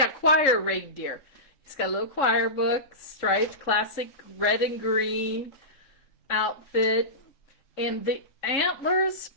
choir reindeer. He's got a little choir book, striped, classic red and green outfit. And the antlers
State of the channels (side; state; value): right; late; 3.6 ms